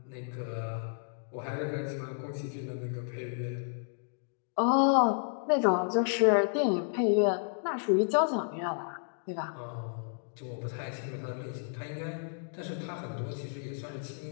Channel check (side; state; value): right; silent; digital silence